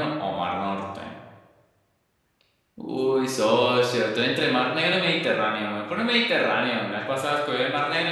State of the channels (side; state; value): both; identical; correlation 1.00